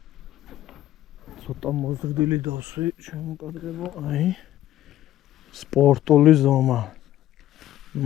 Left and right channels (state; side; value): quieter; right; 13.3 dB